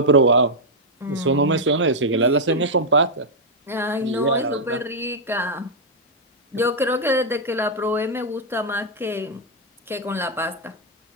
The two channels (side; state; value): both; normal; correlation -0.04